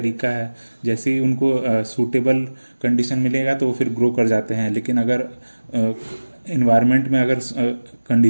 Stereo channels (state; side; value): inverted; both; correlation -1.00